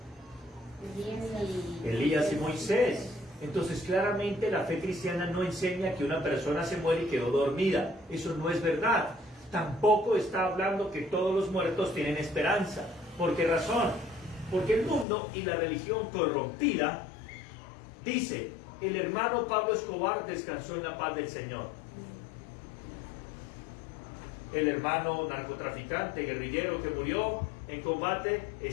Elías y Moisés. Entonces claramente la fe cristiana no enseña que una persona se muere y quedó dormida. Eso no es verdad. Tampoco está hablando que todos los muertos tienen esperanza. ¿Por qué razón? Porque el mundo y la religión corrompida dice: el hermano Pablo Escobar descansó en la paz del Señor. El hermano narcotraficante, guerrillero que murió en combate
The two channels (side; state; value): right; drops out; at 15.1 s